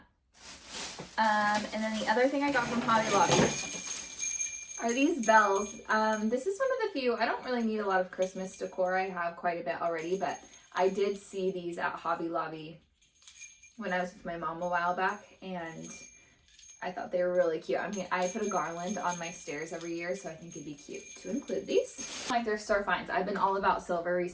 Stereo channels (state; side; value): identical; both; correlation 1.00